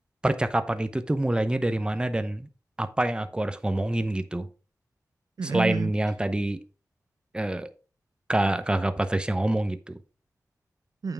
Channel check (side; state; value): both; normal; correlation 0.96